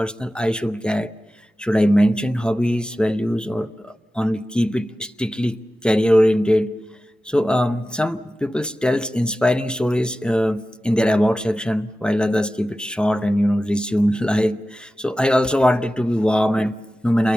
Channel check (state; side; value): normal; both; correlation 0.95